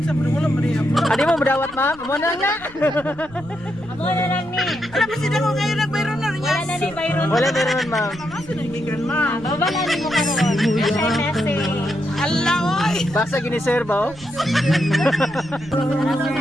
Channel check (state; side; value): noise; right; rumble, 22 dB below the sound